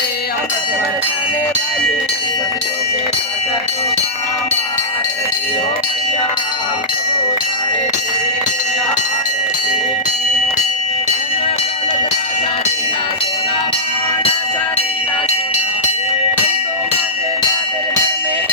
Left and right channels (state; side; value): normal; both; correlation -0.14